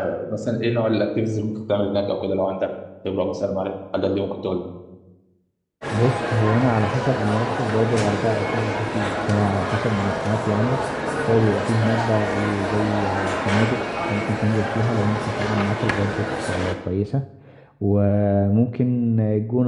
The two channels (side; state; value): both; identical; correlation 1.00